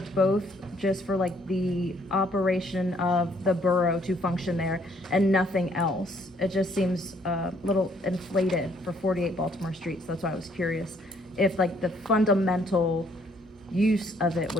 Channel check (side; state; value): both; normal; correlation 0.66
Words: both just for like the operation of the borough to function there and nothing else. It just seems a little inflated for 48 Baltimore Street, so that's why I was curious if like the fundamental use of it